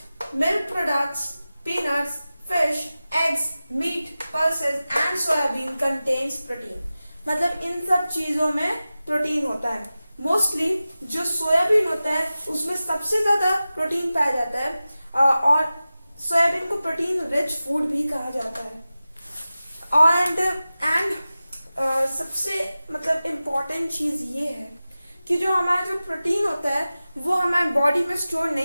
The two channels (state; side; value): inverted; both; correlation -0.96